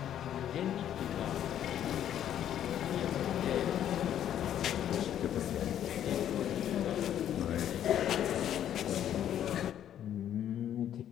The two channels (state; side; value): quieter; right; 10.6 dB